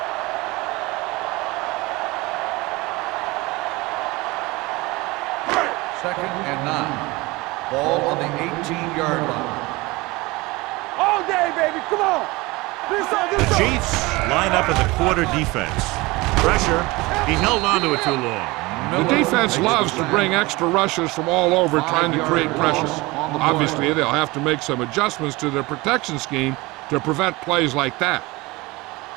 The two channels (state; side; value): quieter; left; 22.5 dB